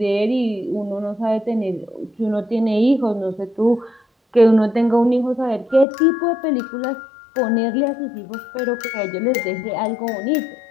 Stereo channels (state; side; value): drops out; right; at 5.9 s